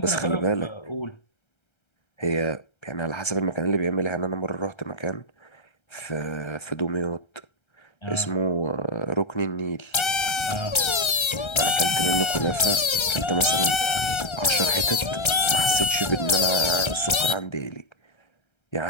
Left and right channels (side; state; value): right; late; 1.3 ms